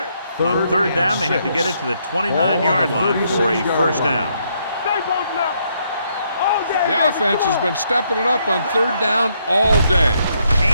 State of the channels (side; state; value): both; inverted; correlation -0.74